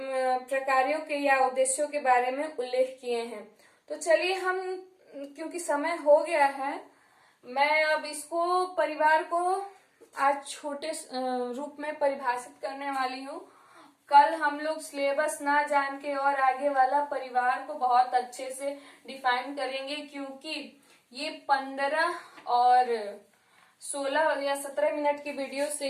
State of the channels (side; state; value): both; identical; correlation 1.00